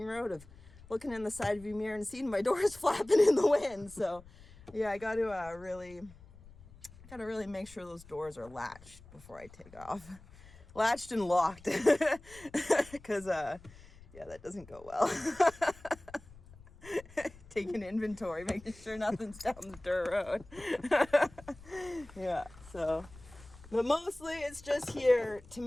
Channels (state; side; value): noise; left; rumble, 21 dB below the sound